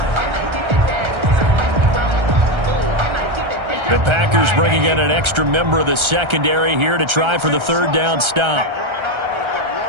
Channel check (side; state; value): left; late; 1.3 ms